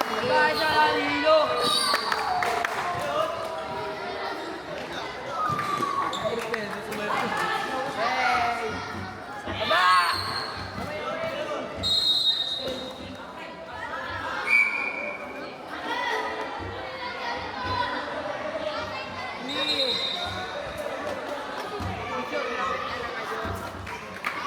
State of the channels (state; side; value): identical; both; correlation 1.00